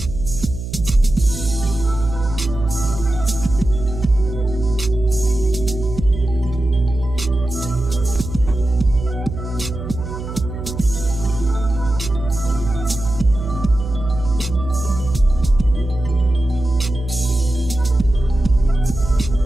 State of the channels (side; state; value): right; noise; hum, 8 dB below the sound